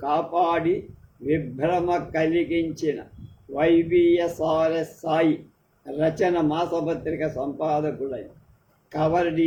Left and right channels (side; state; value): both; identical; correlation 1.00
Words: కాపాడి విభ్రమ కలిగించిన వైబిఎస్ఆర్ఎస్ సాయి రచన మాసపత్రిక సంపాదకుడైన కవర్